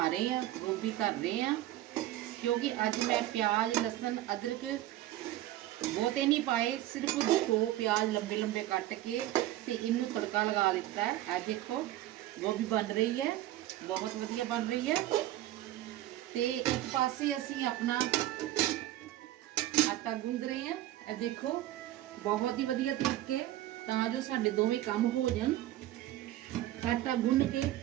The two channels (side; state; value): left; quieter; 14.6 dB